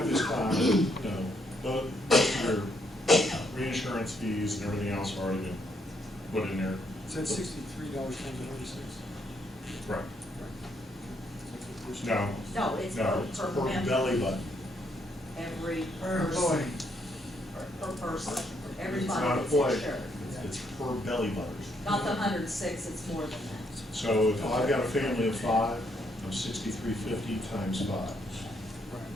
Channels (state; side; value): normal; both; correlation 0.73